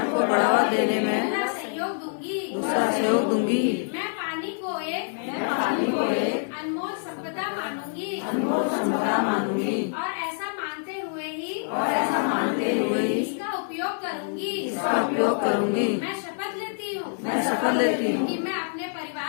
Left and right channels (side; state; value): right; silent; 60 dB below the other